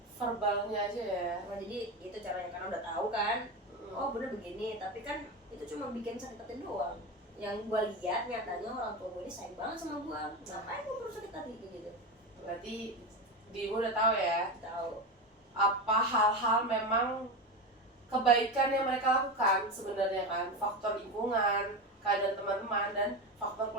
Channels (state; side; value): normal; both; correlation 0.19